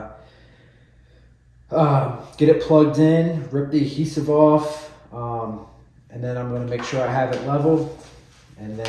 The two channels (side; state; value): both; identical; correlation 1.00